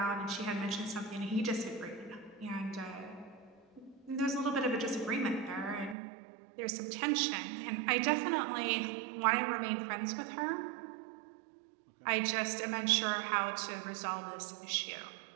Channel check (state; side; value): drops out; left; at 6.0 s